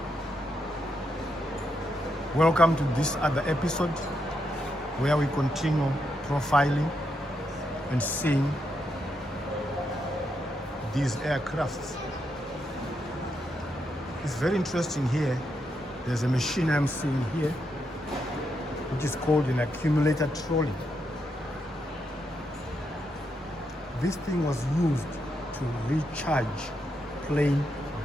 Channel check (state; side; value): normal; both; correlation 0.81